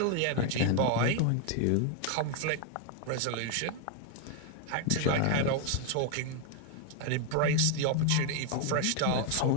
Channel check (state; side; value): different; both; correlation 0.01